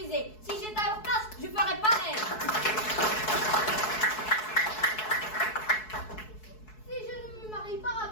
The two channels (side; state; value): right; late; 4.7 ms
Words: Si j'étais à leur place, je ferais pareil. Si je ne me marie pas